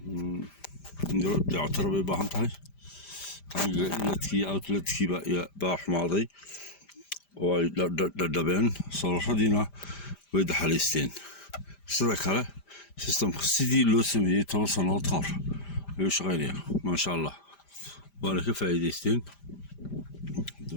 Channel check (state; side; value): late; right; 5.0 ms